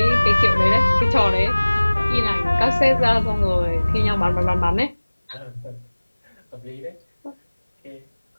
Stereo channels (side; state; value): both; inverted; correlation -1.00